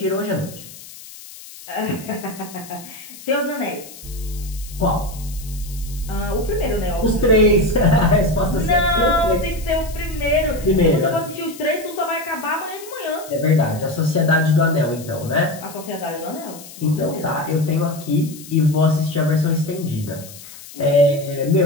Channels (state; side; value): noise; left; hiss, 17 dB below the sound